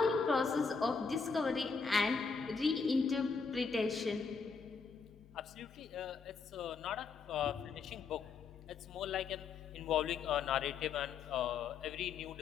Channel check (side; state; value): right; quieter; 5.3 dB